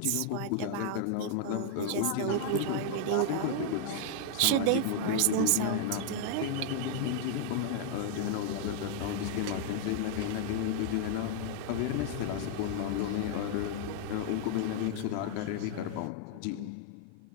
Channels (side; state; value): both; different; correlation 0.00